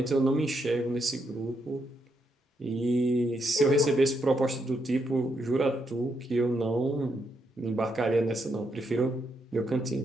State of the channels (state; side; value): normal; both; correlation 0.79